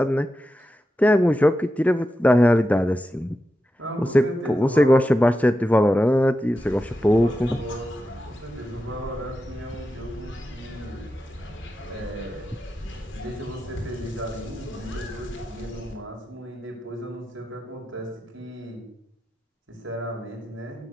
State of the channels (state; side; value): normal; both; correlation 0.90